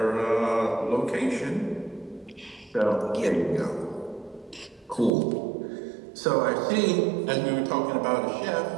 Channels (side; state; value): left; drops out; at 5.1 s